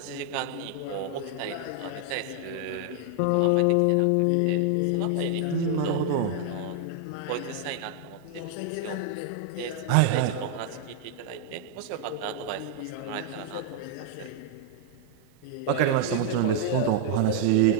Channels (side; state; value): both; different; correlation 0.00